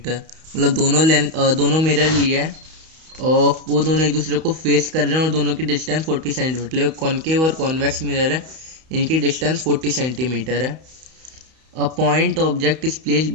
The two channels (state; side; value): late; left; 31 ms